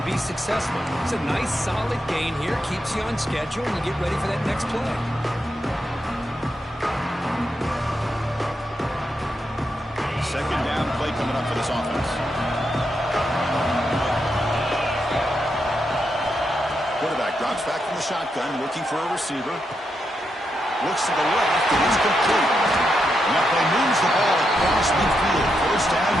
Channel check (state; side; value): normal; both; correlation 0.83